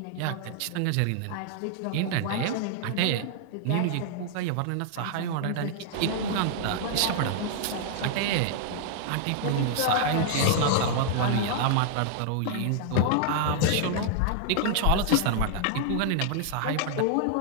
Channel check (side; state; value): both; different; correlation 0.00